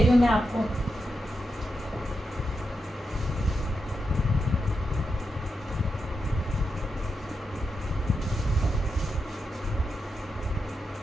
हूँ मैं आपको।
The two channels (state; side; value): normal; both; correlation 0.86